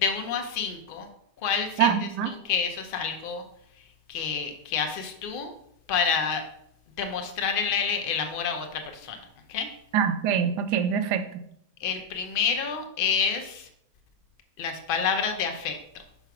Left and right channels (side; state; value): right; late; 2.5 ms